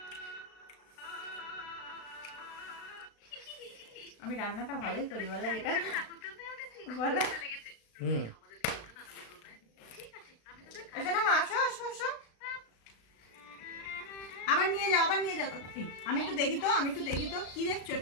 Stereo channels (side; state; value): right; late; 36 ms